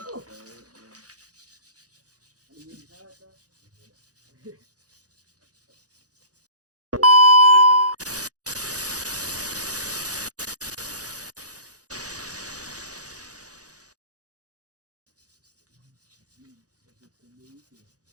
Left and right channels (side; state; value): left; late; 0.67 ms